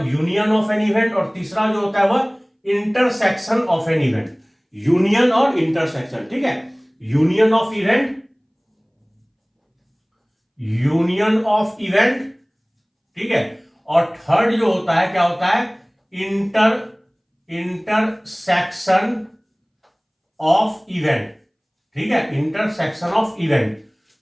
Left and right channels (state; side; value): identical; both; correlation 1.00